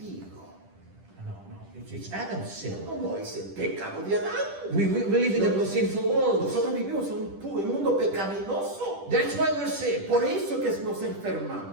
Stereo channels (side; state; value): left; late; 10 ms